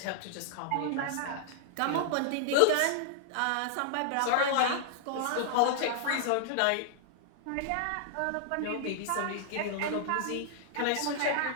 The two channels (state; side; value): different; both; correlation -0.01